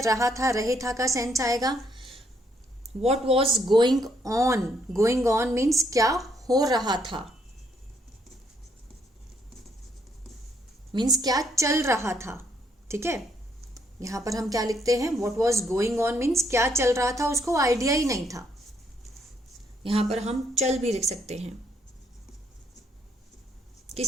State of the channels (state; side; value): normal; both; correlation 0.71